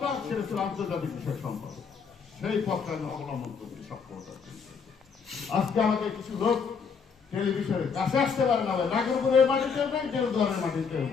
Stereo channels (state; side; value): quieter; right; 5.9 dB